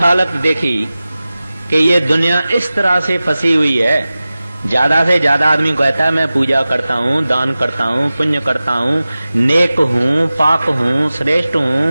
देखी कि ये दुनिया इस तरह से फंसी हुई है, ज्यादा से ज्यादा आदमी कहता है मैं पूजा करता हूँ, दान करता हूँ, पुण्य करता हूँ, नेक हूँ, पाक हूँ, श्रेष्ठ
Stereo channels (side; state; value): both; inverted; correlation -0.96